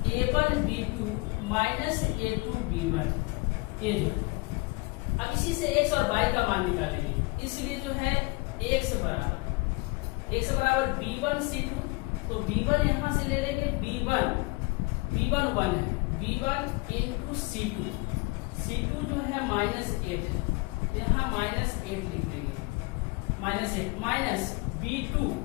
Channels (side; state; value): right; quieter; 25.5 dB